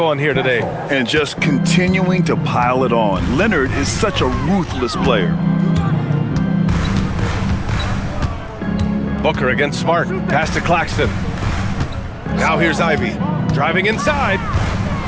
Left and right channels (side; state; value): both; identical; correlation 1.00